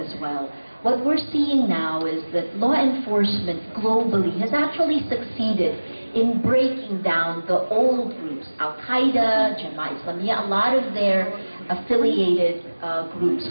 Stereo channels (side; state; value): both; inverted; correlation -1.00